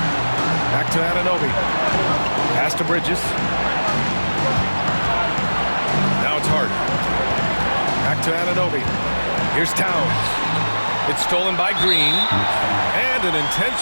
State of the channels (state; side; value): inverted; both; correlation -1.00